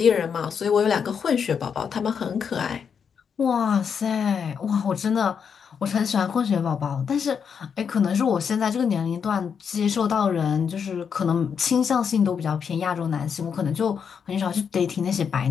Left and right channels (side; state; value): right; quieter; 6.8 dB